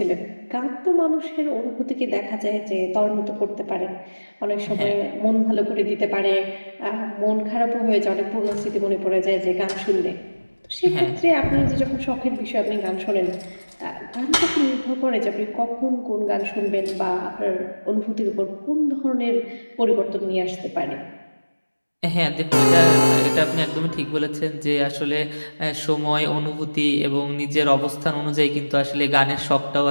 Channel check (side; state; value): both; inverted; correlation -1.00